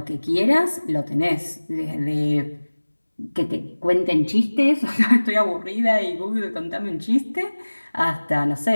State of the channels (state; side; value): inverted; both; correlation -1.00